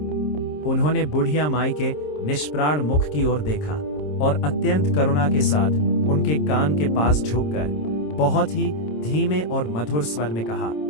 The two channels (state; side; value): late; right; 27 ms